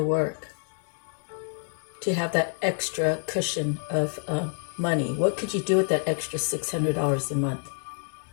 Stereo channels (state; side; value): silent; right; 60 dB below the other